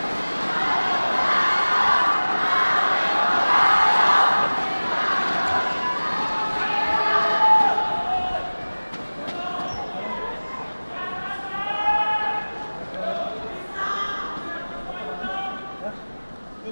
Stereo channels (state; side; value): inverted; both; correlation -1.00